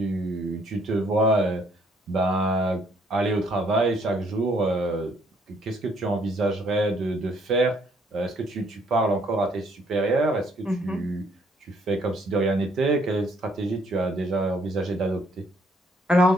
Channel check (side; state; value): both; normal; correlation 0.66